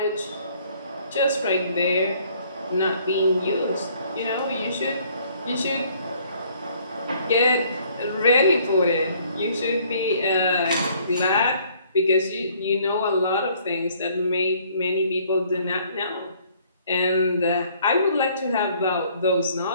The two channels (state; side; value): inverted; both; correlation -0.61